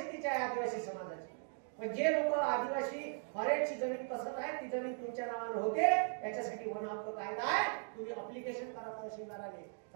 आहे आदिवासी समाजाचे. पण जे लोक आदिवासी फॉरेस्टची जमीन कसत आहे ती जमीन तुमच्या नावाने होते, त्याच्यासाठी वन हक्क कायदा आहे. तुम्ही अप्लिकेशन करा तहसीलदाराने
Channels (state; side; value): silent; left; 52 dB below the other